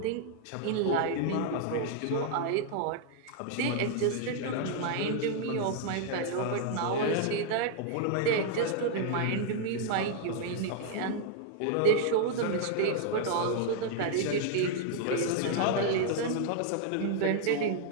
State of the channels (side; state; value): both; different; correlation 0.00